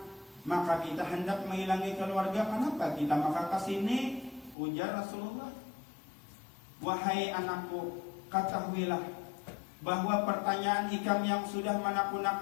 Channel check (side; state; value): right; drops out; at 4.5 s